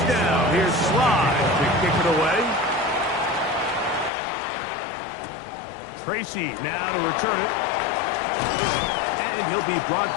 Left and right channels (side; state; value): right; drops out; at 4.1 s